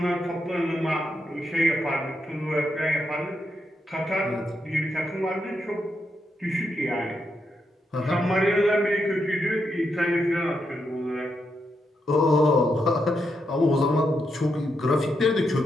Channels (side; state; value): both; normal; correlation 0.82